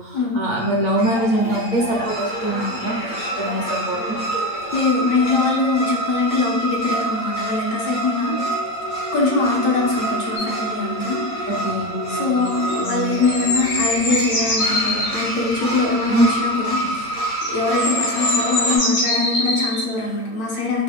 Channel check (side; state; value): right; late; 8.7 ms